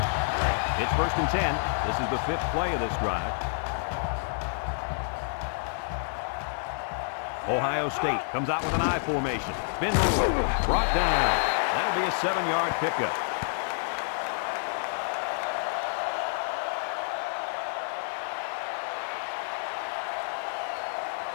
It's first and 10. This is the 5th play of this drive. Ohio State comes out with an I formation. Spin move. Brought down. That'll be a 7-yard pickup.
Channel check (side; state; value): right; silent; digital silence